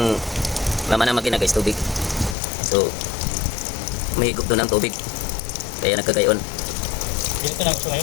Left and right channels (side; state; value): right; drops out; at 2.4 s